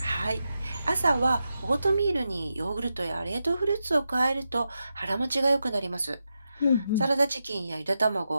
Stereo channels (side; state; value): both; inverted; correlation -0.88